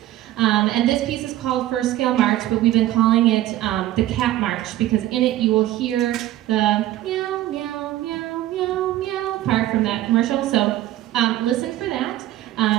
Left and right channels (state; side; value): quieter; left; 14.5 dB